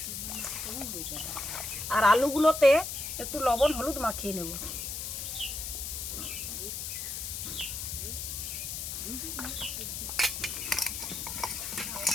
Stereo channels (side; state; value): left; noise; hiss, 5 dB below the sound